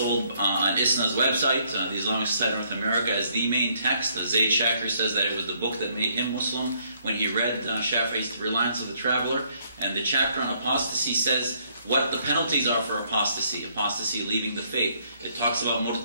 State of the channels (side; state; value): both; inverted; correlation -0.68